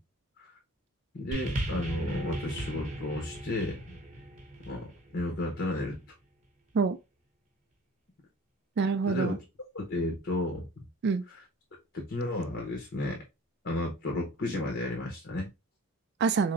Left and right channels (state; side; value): normal; both; correlation 0.47